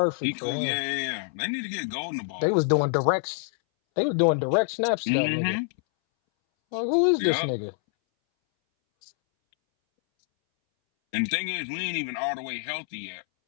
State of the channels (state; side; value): silent; right; 61 dB below the other